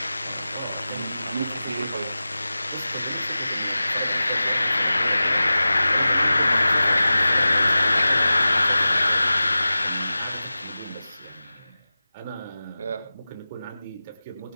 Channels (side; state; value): both; inverted; correlation -0.95